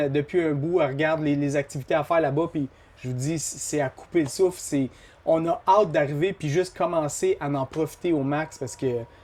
depuis un bout, elle regarde les activités à faire là-bas, puis je vous dis, c'est à couper le souffle. On a hâte d'arriver puis juste commencer à en profiter au max parce que,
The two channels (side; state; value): both; identical; correlation 1.00